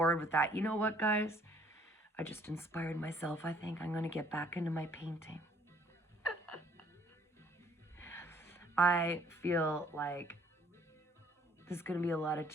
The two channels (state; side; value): normal; both; correlation 0.60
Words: with that. You know what, guys? I just inspired myself. I think I'm going to get back into my painting. I feel like there's going to be a lot of